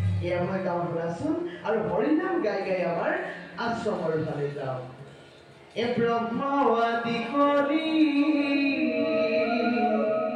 এয়া মই গাঁও শুনাচোন আৰু হৰিনাম গাই গাই আমাৰ আশ্ৰমৰ ফালে যাওঁ। এ ব্ৰহ্ম আদি কৰি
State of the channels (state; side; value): identical; both; correlation 1.00